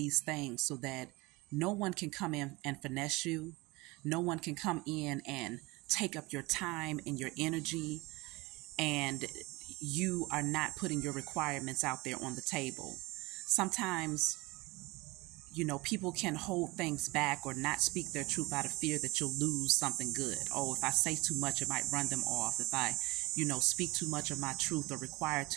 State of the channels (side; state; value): left; quieter; 23.4 dB